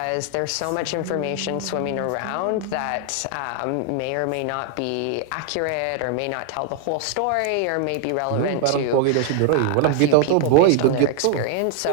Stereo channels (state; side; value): different; both; correlation 0.00